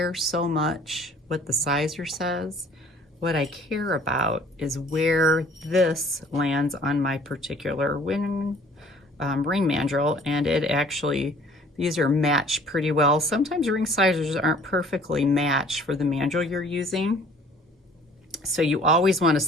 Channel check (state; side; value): normal; both; correlation 0.53